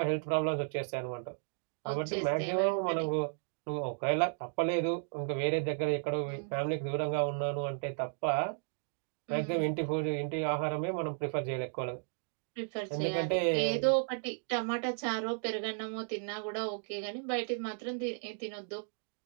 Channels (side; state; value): left; silent; digital silence